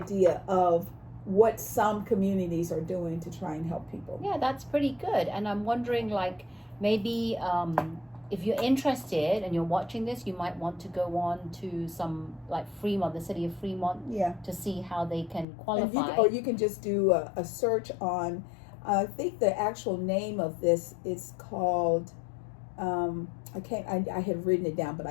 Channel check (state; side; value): drops out; right; at 15.5 s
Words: of what some communities are doing to try and help people. Yeah, that's pretty good. And I'm wondering, like, maybe if you're interested and you're watching this, you might want to go on to some, like, Fremont, the city of Fremont, to see how they can qualify. Or you can just do a search on, I think the actual name of this is called, I had written it down, but